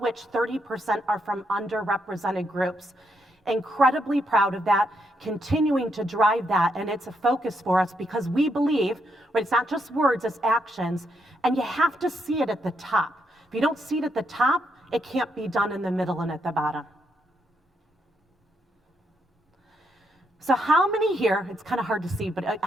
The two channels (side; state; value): both; normal; correlation 0.78